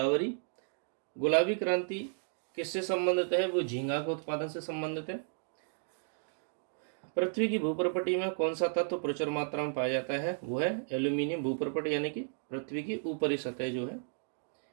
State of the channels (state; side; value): silent; left; digital silence